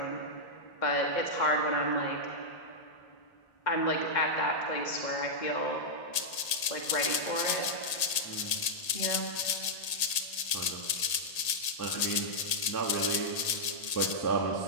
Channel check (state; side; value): late; right; 1.8 ms